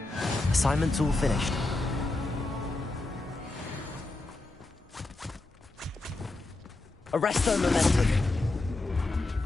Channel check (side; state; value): right; quieter; 3.0 dB